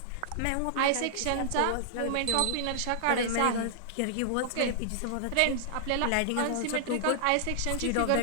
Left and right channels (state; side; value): different; both; correlation -0.01